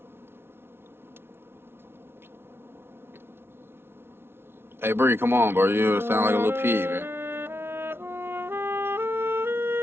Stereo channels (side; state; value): left; late; 0.11 ms